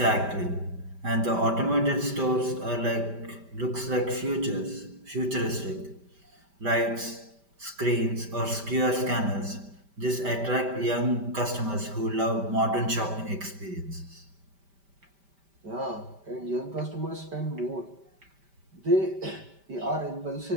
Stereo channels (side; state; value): left; late; 5.1 ms